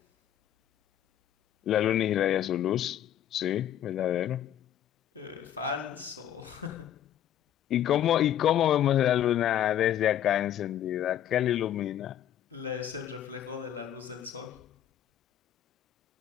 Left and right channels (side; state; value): right; quieter; 10.9 dB